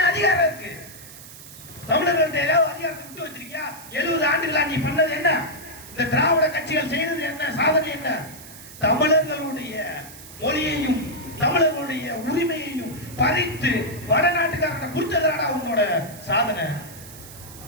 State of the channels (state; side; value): noise; right; hiss, 17 dB below the sound